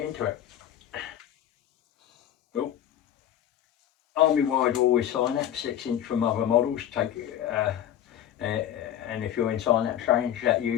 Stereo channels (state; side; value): quieter; right; 10.9 dB